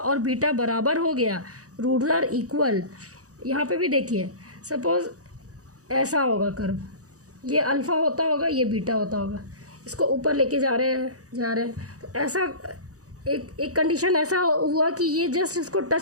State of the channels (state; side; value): late; left; 0.66 ms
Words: बीटा बराबर हो गया, रूट्स आर इक्वल। यहाँ पे भी देखिए सपोज ऐसा होगा कर्व, ये अल्फ़ा होता होगा, ये बीटा होता होगा, इसको ऊपर लेके जा रहे हैं तो ऐसा एक कंडीशन ऐसा हुआ कि ये जस्ट इसको